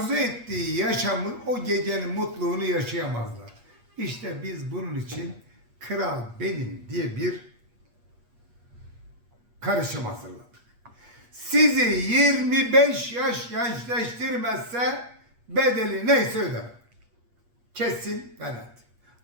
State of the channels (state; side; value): late; left; 8.4 ms